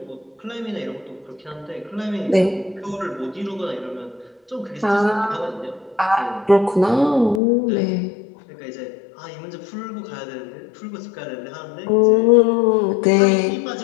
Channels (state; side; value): drops out; right; at 7.4 s